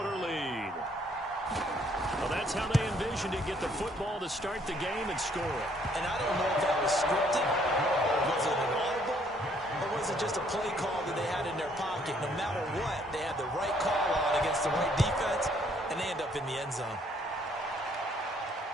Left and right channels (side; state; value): both; normal; correlation 0.65